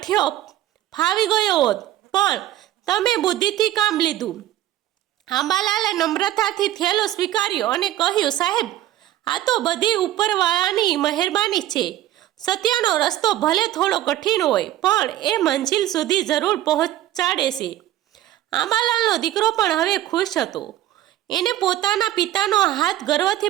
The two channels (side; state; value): left; quieter; 13.7 dB